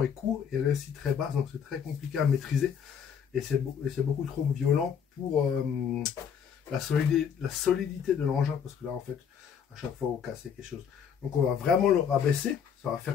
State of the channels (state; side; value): quieter; right; 7.6 dB